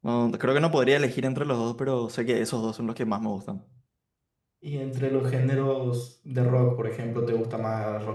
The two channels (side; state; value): both; identical; correlation 1.00